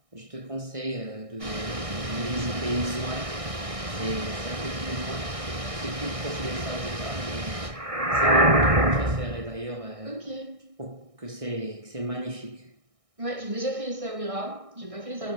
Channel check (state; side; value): late; left; 1.6 ms